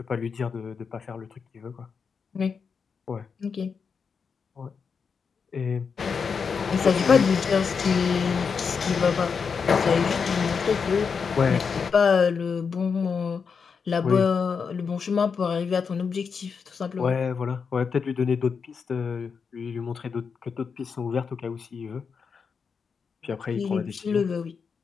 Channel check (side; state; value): right; quieter; 5.8 dB